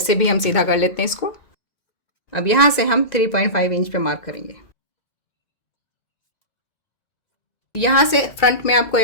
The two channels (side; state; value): right; late; 1.9 ms